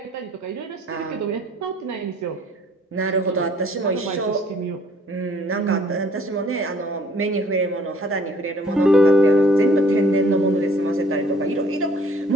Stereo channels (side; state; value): both; normal; correlation 0.58